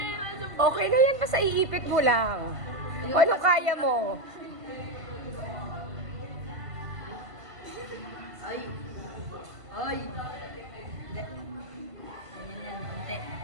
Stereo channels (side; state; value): left; late; 1.5 ms